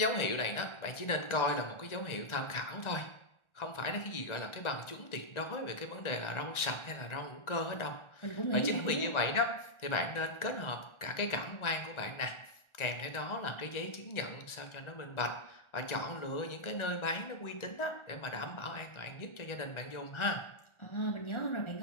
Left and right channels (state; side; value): late; right; 1.4 ms